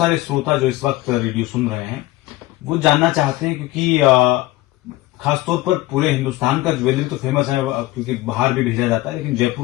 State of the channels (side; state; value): right; quieter; 18.0 dB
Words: श्रोता जो इस वक्त रेडियो सुन रहे हैं वो जानना चाहते हैं, क्योंकि खासतौर पर पूरे हिंदुस्तान का ज्वेलरी तो फेमस है, क्योंकि बाहर भी भेजा जाता है, लेकिन